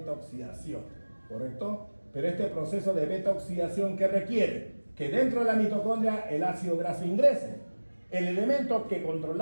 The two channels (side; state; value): both; inverted; correlation -1.00